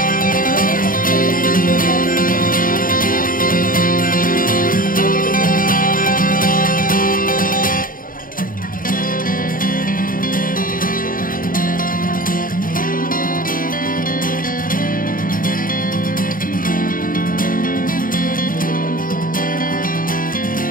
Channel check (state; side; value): late; right; 0.41 ms